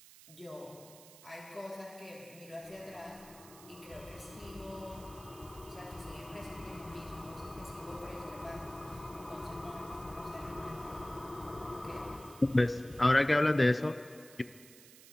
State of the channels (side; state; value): right; noise; hiss, 19 dB below the sound